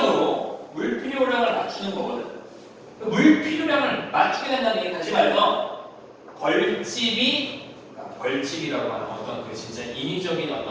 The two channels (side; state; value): both; identical; correlation 1.00